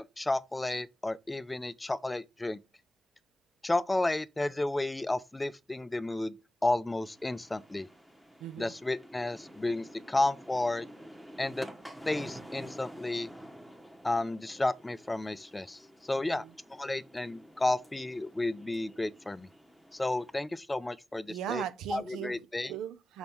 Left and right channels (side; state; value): both; normal; correlation 0.96